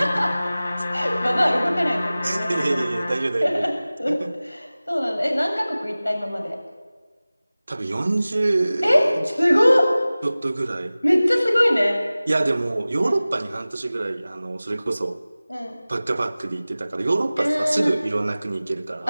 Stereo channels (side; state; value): both; inverted; correlation -0.98